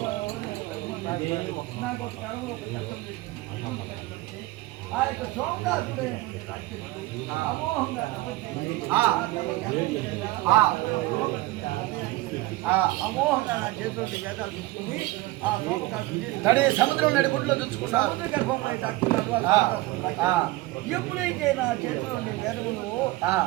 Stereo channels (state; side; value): quieter; left; 19.1 dB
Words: నాకు కళలో ఒక కష్టం ఆ యొక్క సోమనాథుడే అమోహంగా అమోహంగా నా చేతిలో వేదాలు తీసుకుని ఆ సోమకాశుడి సముద్రం నడిగుడ్లో చూసుకున్నాడు. సముద్ర గర్భంలో దాక్కున్నాడు. ఎప్పుడైతే నా చేతిలో వేదములు